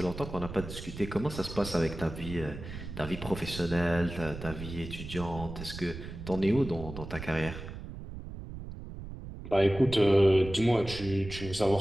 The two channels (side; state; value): right; noise; rumble, 10 dB below the sound